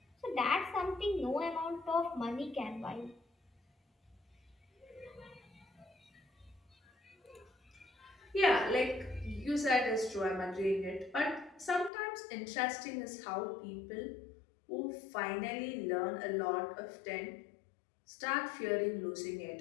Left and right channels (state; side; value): drops out; right; at 11.9 s